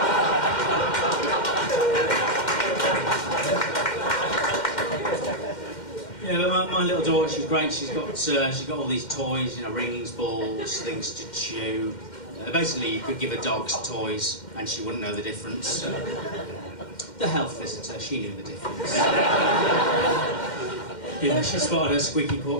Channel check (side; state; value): right; late; 2.1 ms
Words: Yeah, but my little daughter, she's great. She's got all these toys, you know, rings, balls, things to chew. Basically, you could give her dogs toys, and she wouldn't know the difference. The health visitor, she knew the difference. Yeah, she spotted her squeaky